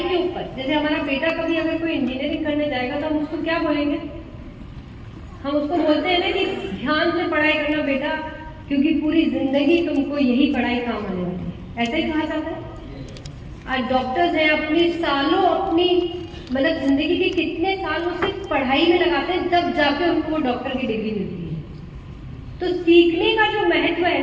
के ऊपर, जैसे हमारा बेटा कभी अगर कोई इंजीनियरिंग करने जाएगा तो हम उसको क्या बोलेंगे? हम उसको बोलते हैं ना कि ध्यान से पढ़ाई करना बेटा, क्योंकि पूरी जिंदगी तुमको यही पढ़ाई काम आने वाली है। ऐसा ही कहा जाता है। आज डॉक्टर्स हैं, अपनी सालों, अपनी मतलब जिंदगी के कितने साल वो सिर्फ पढ़ाई में लगाते हैं, तब जाके उनको वो डॉक्टर की डिग्री मिलती है। तो सीखने का जो महत्व है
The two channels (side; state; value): both; identical; correlation 1.00